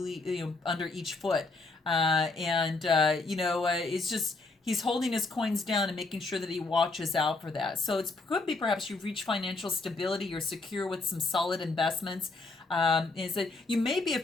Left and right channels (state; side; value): quieter; right; 3.5 dB